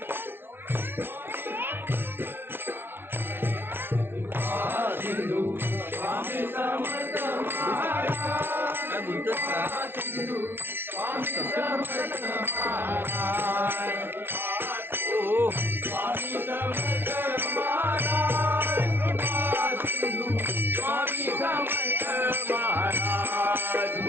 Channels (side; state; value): left; late; 0.11 ms